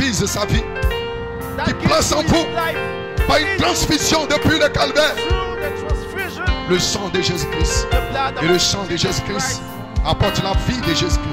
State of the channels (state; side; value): identical; both; correlation 1.00